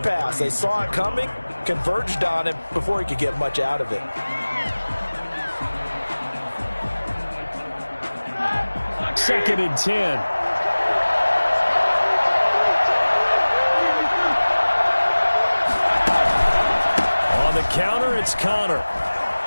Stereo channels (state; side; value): inverted; both; correlation -1.00